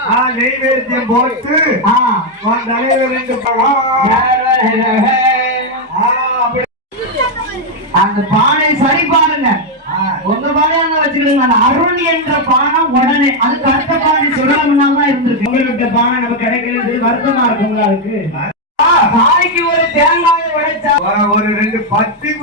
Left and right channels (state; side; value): normal; both; correlation 0.02